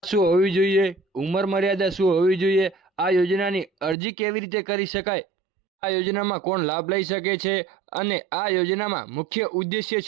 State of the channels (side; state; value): left; drops out; at 4.0 s